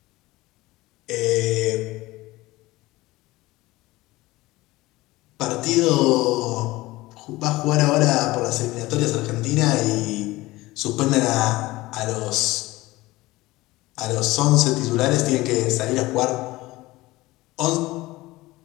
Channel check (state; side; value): quieter; right; 19.4 dB